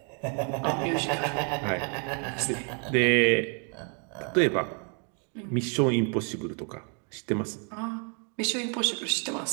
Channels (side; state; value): left; quieter; 39.6 dB